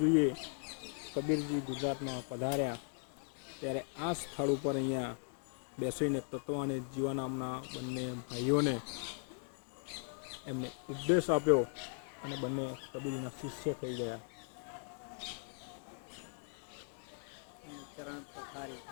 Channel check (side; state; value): right; silent; 52 dB below the other